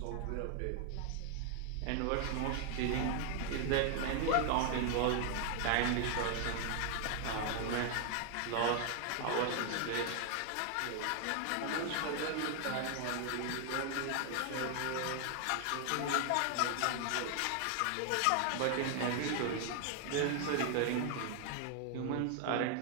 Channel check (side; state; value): both; different; correlation 0.00